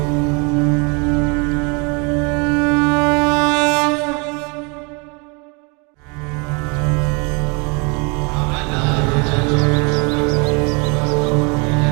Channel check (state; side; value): quieter; left; 32.0 dB